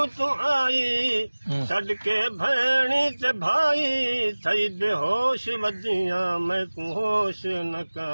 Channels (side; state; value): both; inverted; correlation -1.00